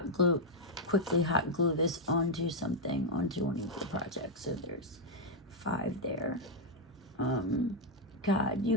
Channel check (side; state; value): both; normal; correlation -0.01